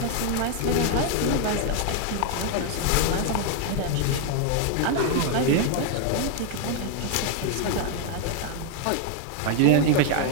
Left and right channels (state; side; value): different; both; correlation 0.01